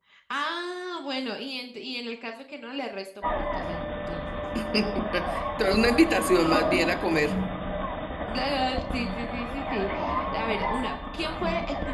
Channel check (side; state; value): both; identical; correlation 1.00